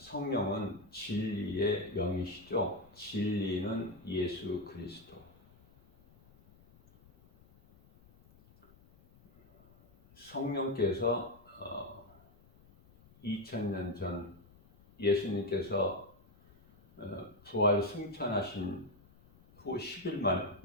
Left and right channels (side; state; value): left; noise; rumble, 26 dB below the sound